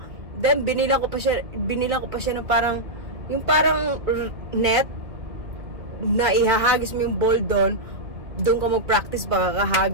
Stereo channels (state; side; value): late; left; 1.9 ms